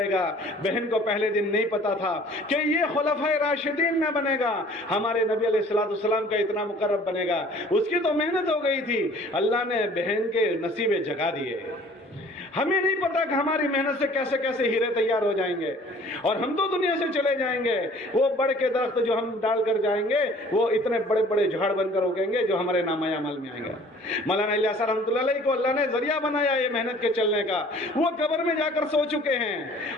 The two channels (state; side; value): normal; both; correlation 0.51